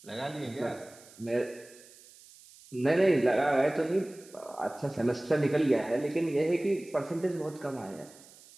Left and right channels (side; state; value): right; noise; hiss, 23 dB below the sound